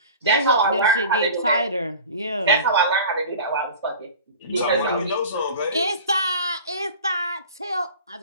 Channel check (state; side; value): inverted; both; correlation -0.38